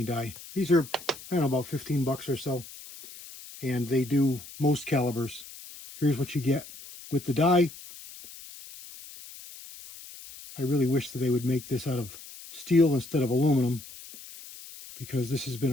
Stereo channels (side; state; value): left; noise; hiss, 16 dB below the sound